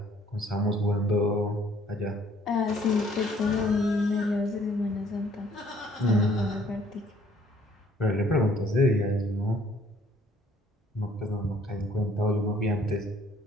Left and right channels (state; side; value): normal; both; correlation 0.60